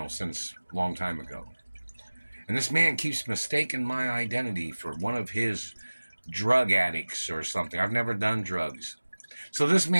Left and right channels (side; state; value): both; inverted; correlation -1.00